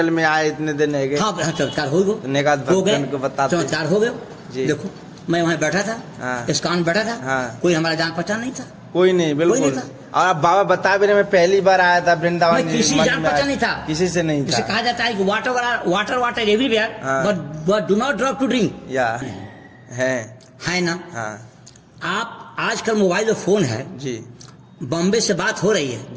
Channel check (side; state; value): both; identical; correlation 1.00